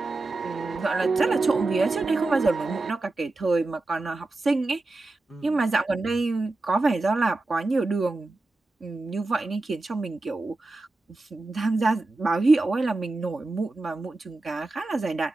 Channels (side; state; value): left; quieter; 3.1 dB